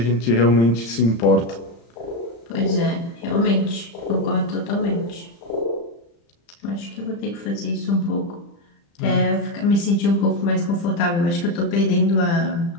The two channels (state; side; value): late; right; 35 ms